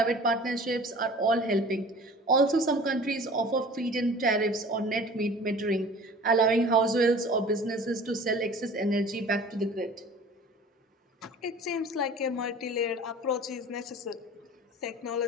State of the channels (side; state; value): both; normal; correlation 0.44